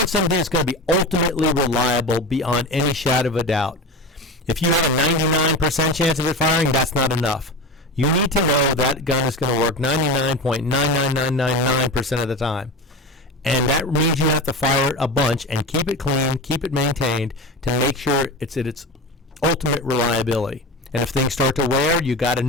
something that's going to be ultimately reliable beyond any shadow of a doubt. If you have a 99% chance of it firing, that's not enough. You need to know that gun is going to work 99.99999% of the time. And that means you have to fire it a bunch and keep it clean, keep it maintained to make sure it's at its ultimate reliability. And if things start to wear, you got to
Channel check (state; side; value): normal; both; correlation 0.26